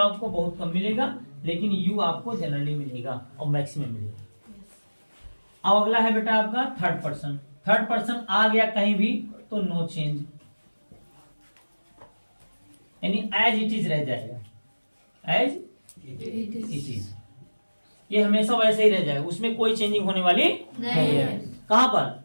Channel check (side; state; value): both; inverted; correlation -1.00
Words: बहुत कम मिलेगा, लेकिन यू आपको जनरली मिलेगा और मैक्सिमम मिलेगा। अब अगला है बेटा आपका थर्ड पर्सन। थर्ड पर्सन आ गया कहीं भी तो नो चेंज, यानी एज इट इज रह जाएगा, एज इट इज। ये हमेशा वैसे ही रह जाएगा, उसमें कोई चेंजिंग होने वाली नहीं है। कहां पर?